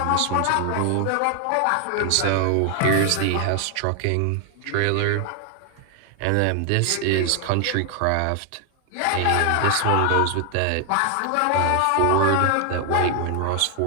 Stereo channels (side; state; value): both; different; correlation 0.00